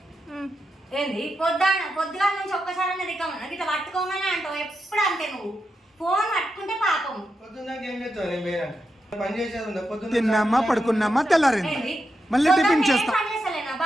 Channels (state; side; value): normal; both; correlation 0.86